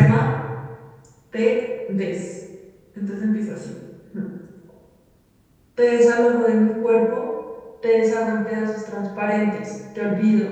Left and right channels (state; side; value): identical; both; correlation 1.00